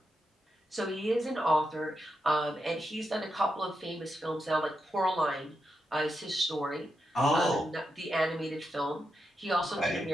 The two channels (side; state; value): both; normal; correlation 0.86